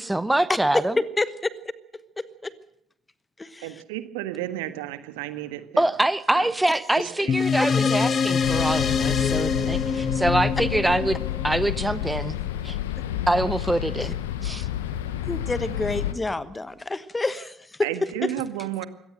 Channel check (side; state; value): both; normal; correlation 0.76